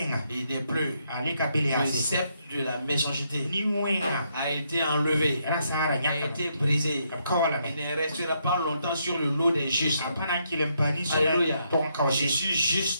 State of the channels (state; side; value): inverted; both; correlation -0.76